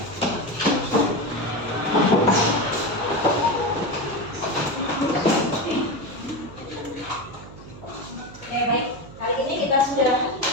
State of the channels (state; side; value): noise; right; hum, 17 dB below the sound